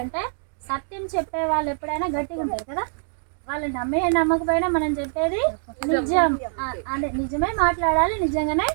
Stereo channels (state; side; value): silent; left; 58 dB below the other